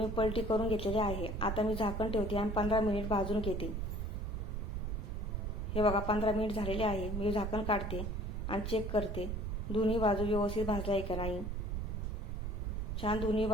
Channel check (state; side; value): noise; right; rumble, 2 dB below the sound